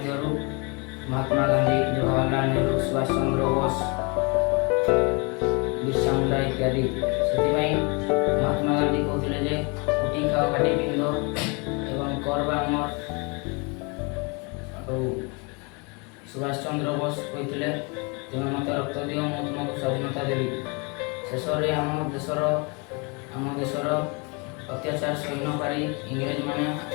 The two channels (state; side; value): quieter; right; 31.4 dB